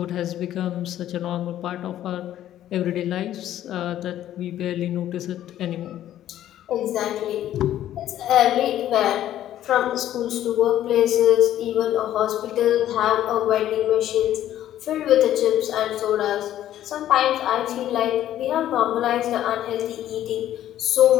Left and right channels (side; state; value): right; quieter; 12.2 dB